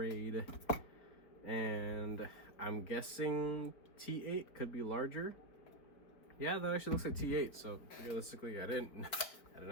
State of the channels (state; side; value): late; right; 4.9 ms